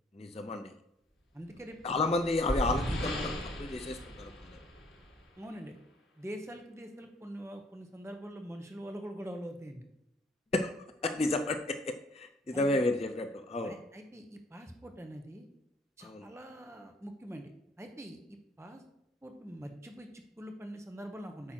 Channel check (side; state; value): both; normal; correlation 0.62